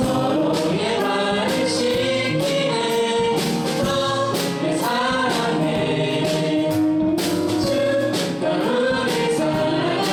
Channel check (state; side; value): identical; both; correlation 1.00